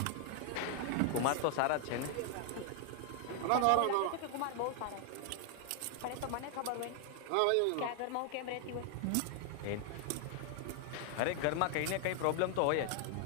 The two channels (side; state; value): both; different; correlation 0.00